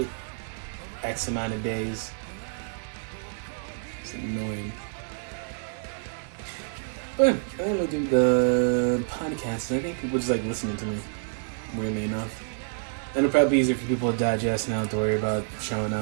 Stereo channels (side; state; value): left; silent; digital silence